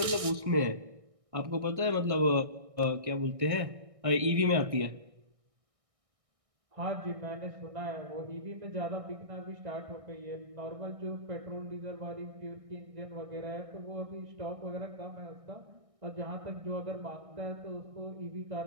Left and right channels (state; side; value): late; left; 1.6 ms